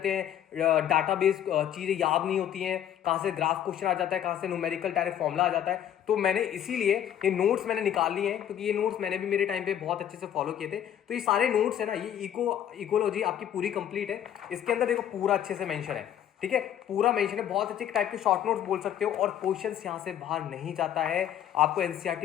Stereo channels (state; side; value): quieter; right; 10.2 dB